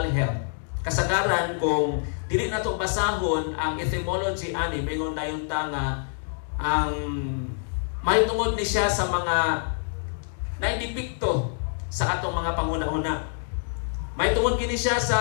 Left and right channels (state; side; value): silent; right; digital silence